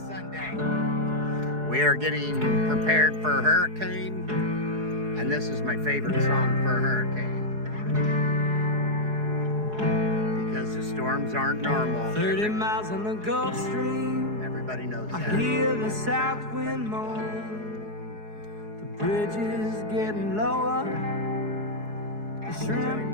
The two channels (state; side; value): late; left; 4.7 ms